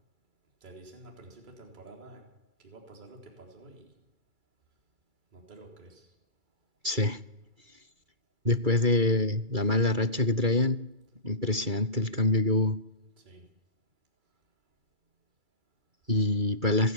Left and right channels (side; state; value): left; late; 2.3 ms